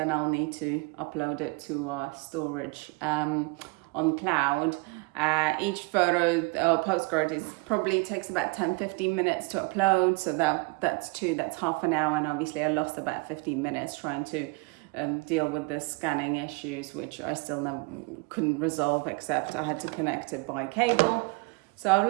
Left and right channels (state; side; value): quieter; left; 27.4 dB